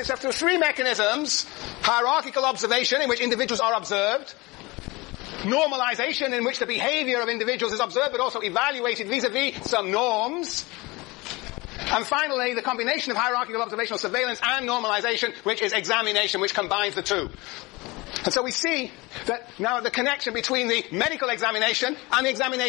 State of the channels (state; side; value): quieter; right; 23.5 dB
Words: through 3 mechanisms. Hierarchical observation, in which individuals are observed. Normalization, in which the behavior of individuals is observed but also evaluated vis-a-vis some norms. And finally, the combination of hierarchical observational surveillance and normalization, which is examination, which combines the 2. And so we see that now the connection between the medical examination and the